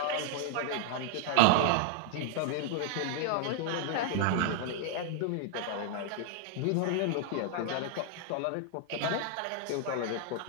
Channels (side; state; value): both; different; correlation 0.00